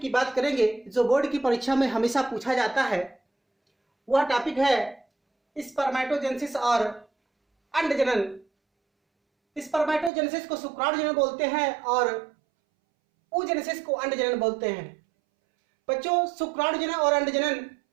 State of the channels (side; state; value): left; drops out; at 10.1 s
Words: बात करेंगे जो बोर्ड की परीक्षा में हमेशा पूछा जाता है। वह टॉपिक है स्पर्मेटोजेनेसिस और अंडजनन। स्पर्मेटोजेनेसिस को शुक्राणुजनन बोलते हैं और oogenesis को अंडजनन बोलते हैं। बच्चों, शुक्राणुजनन और अंडजनन